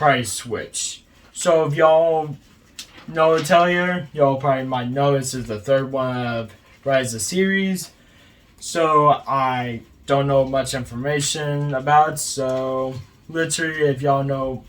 Switch. So if y'all know Atelier, y'all probably might know this is the 3rd one of Ryza series. So I don't know much information about it, so literally if y'all know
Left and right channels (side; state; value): both; identical; correlation 1.00